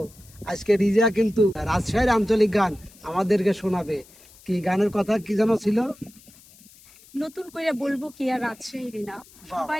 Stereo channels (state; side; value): noise; left; hiss, 25 dB below the sound